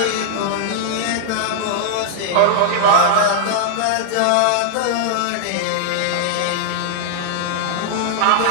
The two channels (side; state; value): both; different; correlation -0.01